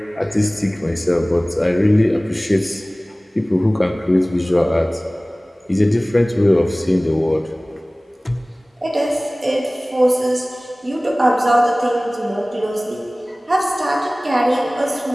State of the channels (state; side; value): normal; both; correlation 0.98